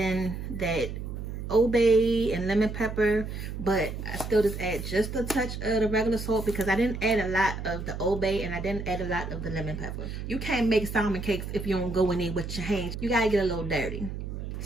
that Old Bay and lemon pepper, but I still just add just a touch of the regular salt because I didn't add a lot of the Old Bay and I didn't add a lot of the lemon pepper. You can't make salmon cakes if you don't go in there with your hands. You gotta get a little dirty.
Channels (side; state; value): right; noise; hum, 7 dB below the sound